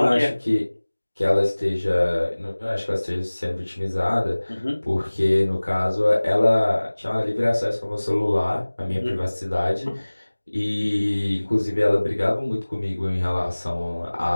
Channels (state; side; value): inverted; both; correlation -1.00